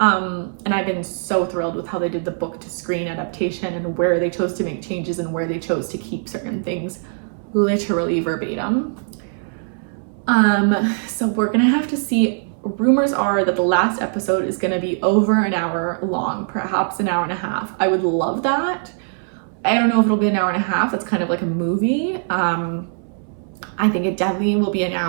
I've been so thrilled with how they did the book to screen adaptation and where they chose to make changes and where they chose to keep certain things literally verbatim. So we're gonna have to see. Rumors are that the last episode is gonna be over an hour long, perhaps an hour and a half. I would love that. I don't know if it'll be an hour and a half. That's kind of like a movie. I think it definitely will be an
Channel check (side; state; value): left; silent; 65 dB below the other